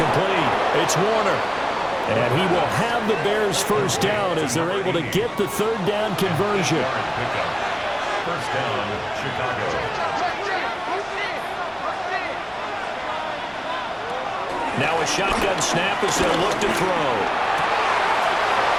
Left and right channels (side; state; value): both; identical; correlation 1.00